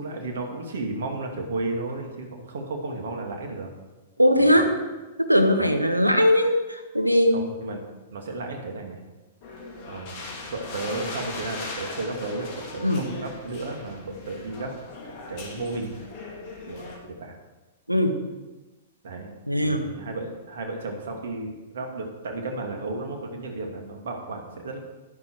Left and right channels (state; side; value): inverted; both; correlation -0.74